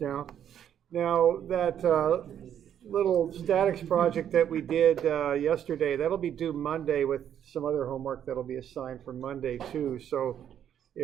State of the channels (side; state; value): left; quieter; 9.6 dB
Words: now. Now, that little statics project that we did yesterday, that'll be due Monday with some other homework that'll be assigned for Monday too. So